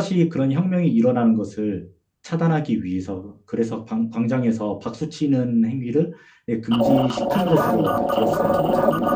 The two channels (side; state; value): both; identical; correlation 1.00